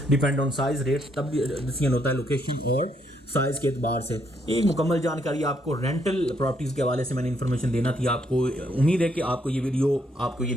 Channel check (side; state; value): both; normal; correlation 0.73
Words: डिपेंड ऑन साइज, रेट तब डिसीजन होता है लोकेशन और साइज़ के एतबार से। एक मुकम्मल जानकारी आपको रेंटल प्रॉपर्टीज़ के हवाले से मैंने इन्फॉर्मेशन देना थी आपको। उम्मीद है कि आपको ये वीडियो, आपको ये